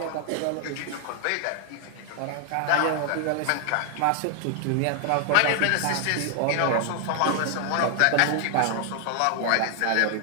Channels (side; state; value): both; different; correlation 0.00